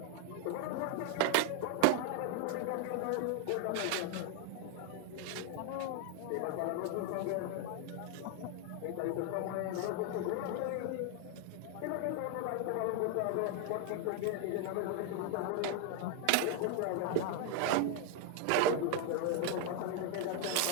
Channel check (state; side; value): different; both; correlation 0.01